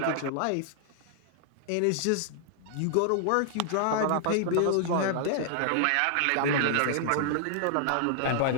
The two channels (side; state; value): both; different; correlation 0.00